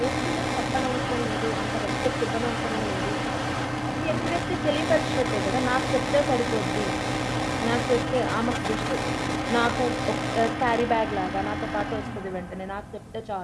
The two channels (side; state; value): both; identical; correlation 1.00